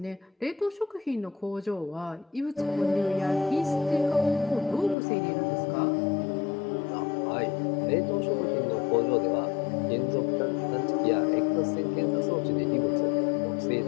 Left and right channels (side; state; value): right; drops out; at 5.0 s